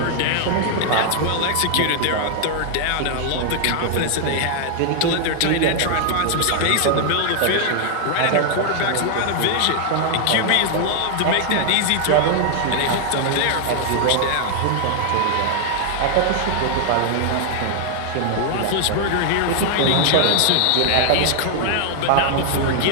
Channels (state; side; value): different; both; correlation 0.00